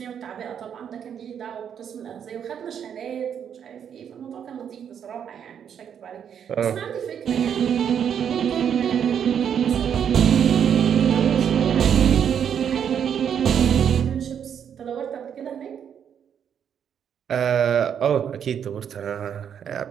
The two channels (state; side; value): quieter; left; 8.3 dB